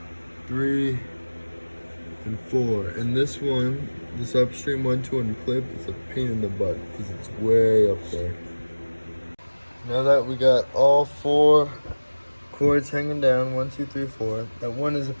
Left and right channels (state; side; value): inverted; both; correlation -1.00